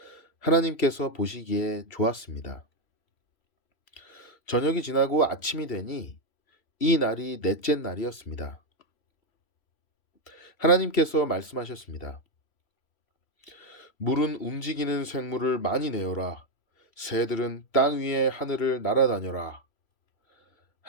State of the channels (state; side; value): late; right; 3.0 ms